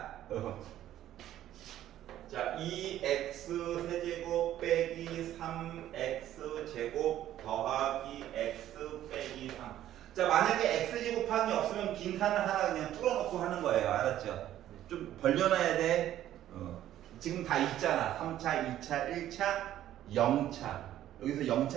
자, 2x 세제곱 빼기 3x 제곱 더하기 x 빼기 3. 자, 만약에 x 제곱함이 없으면 빈칸을 하나 그냥 뚫어놓고 하는 거예요. 알았죠? 좀 벌려놔야 돼. 지금 다 있잖아. 3차, 2차, 1차, 0차. 여기서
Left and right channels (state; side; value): quieter; left; 12.4 dB